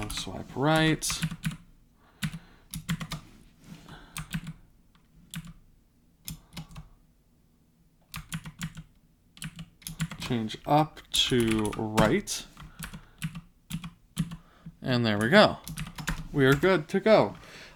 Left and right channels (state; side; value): identical; both; correlation 1.00